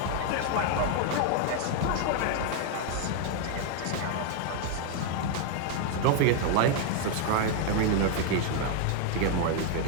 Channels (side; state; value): both; different; correlation 0.00